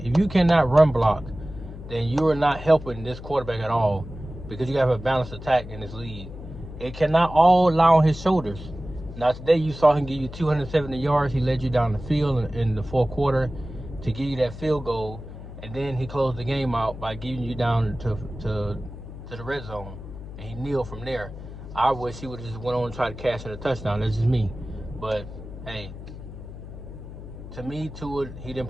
cannot run block, then you are not helping this quarterback at all, because you have a balanced attack in this league. It cannot all lie on his shoulders. Now, today you saw him give you 270 yards. He led you down the field in the 4th quarter to give you that field goal, and then he closed the game out by getting you down to the red zone, and he kneeled from there. I wish he would have just went on and tried to cash in a touchdown. That's just me. But, hey, to me, Tua, he didn't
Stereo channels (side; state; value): left; noise; hum, 12 dB below the sound